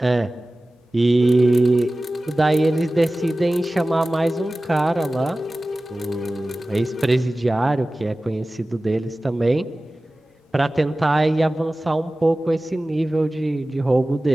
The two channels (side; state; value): both; normal; correlation 0.97